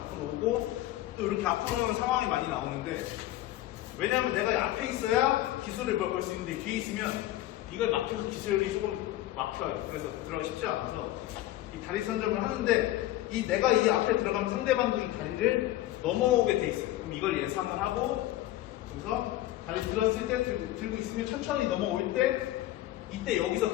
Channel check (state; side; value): quieter; right; 15.1 dB